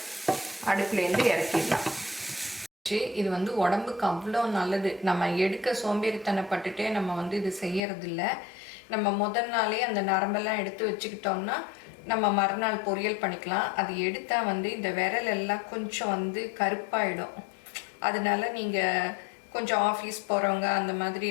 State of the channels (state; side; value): drops out; right; at 7.8 s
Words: அடுப்புலேருந்து இறக்கிடலாம். இது உடம்புக்கு அவ்வளோ நல்லது. நம்ம எடுக்க சோம்பேறித்தனப்பட்டுட்டே நம்ம இது செய்யறதில்ல. நம்ம முதல் நாளே அந்த நரம்பெல்லாம் எடுத்து வச்சுக்கிட்டோம்னா நம்ம மறுநாள் பொரியல் பண்ணிக்கலாம். அது எடுத்தால் இந்த விரல் எல்லாம் கொஞ்சம் கருப்பாயிடும். அதனால நீங்கள் கொஞ்சம் ஆஃபீஸ் போகிறவங்க அந்த மாதிரி